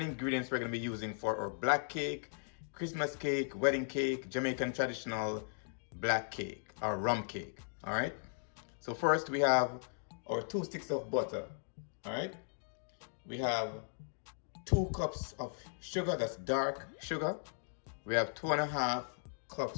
ingredients we're going to be using for our black cake, Christmas cake, wedding cake, Jamaican traditional black cake or rum cake. All right. So first we have our 2 sticks of butter. All right. We have 2 cups of sugar, that's dark sugar. We have 2.5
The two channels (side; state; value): right; silent; digital silence